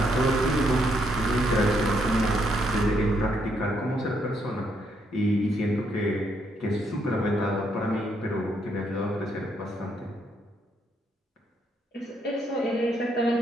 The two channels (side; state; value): both; normal; correlation 0.74